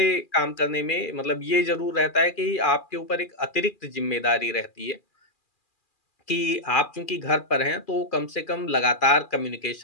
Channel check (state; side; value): late; right; 2.4 ms